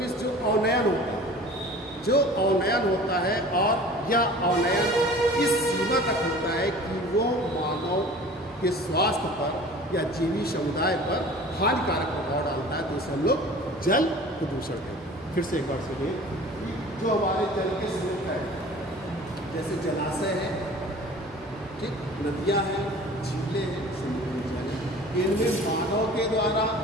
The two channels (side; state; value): both; normal; correlation 0.43